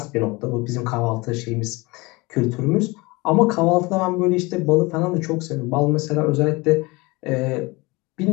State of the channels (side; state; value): right; quieter; 24.2 dB